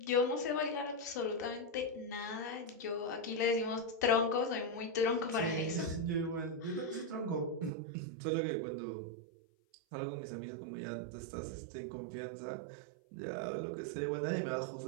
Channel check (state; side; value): drops out; left; at 7.7 s